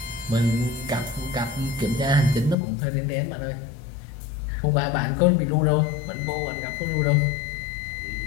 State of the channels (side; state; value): right; drops out; at 2.6 s